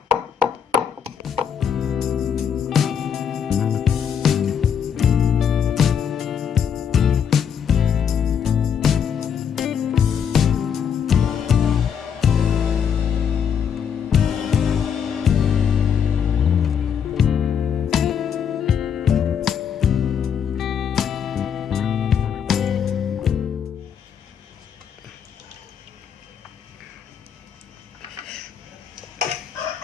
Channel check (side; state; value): right; quieter; 7.7 dB